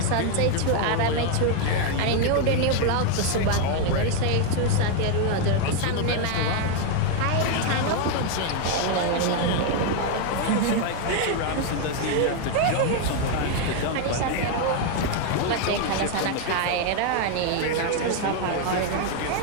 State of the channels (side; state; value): both; different; correlation 0.01